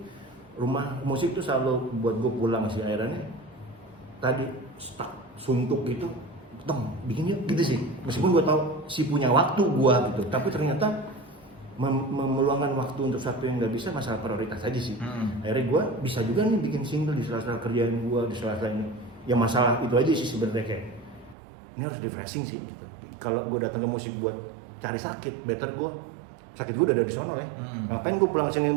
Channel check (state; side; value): drops out; left; at 21.4 s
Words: rumah musik tuh selalu buat gue pulang sih, akhirnya tadi stuck suntuk gitu. Bikin yuk gitu sih. Meskipun gue tahu si punya waktu gue gitu, tapi ternyata meluangkan waktu untuk satu yang nggak bisa, masalah prioritas aja sih. Akhirnya gue bisa juga nih bikin single di sela-sela kerjaan gue, di sela-sela ini. Ya masalah itu aja sih sebenarnya, kayak ini harus refreshing sih gitu. Kalau gue datang ke musik buat cari sakit, better gue sakit gue udah ada di sono ya. Ngapain gue pulang